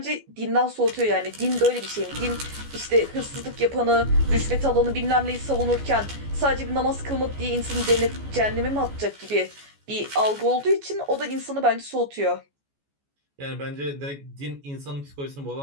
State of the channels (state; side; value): late; left; 14 ms